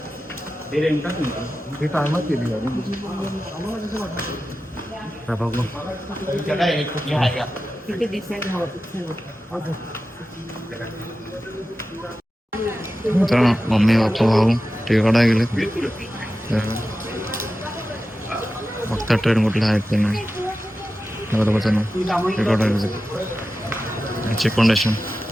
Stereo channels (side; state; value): both; normal; correlation 0.93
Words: हे टायमात केली गाडी. बघू मित्रांनो मम्मी पप्पा भाऊ तिकडे गेले बघता ट्रेन कुठला आहेत ते नाही बरोबरच ना तिकडे चेक फाउंडेशन